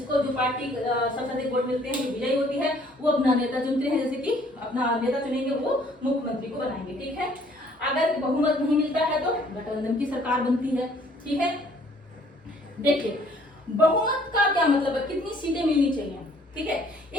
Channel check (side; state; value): both; normal; correlation 0.60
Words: जो पार्टी सबसे अधिक वोट मिलते हैं, विजयी होती है, वो अपना नेता चुनते हैं, जैसे कि अपना नेता चुनेंगे, वो मुख्यमंत्री को बनाएंगे। ठीक है, अगर बहुमत नहीं मिलता है तो गठबंधन की सरकार बनती है। ठीक है, देखिए बहुमत का क्या मतलब है, कितनी सीटें मिलनी चाहिए। ठीक है,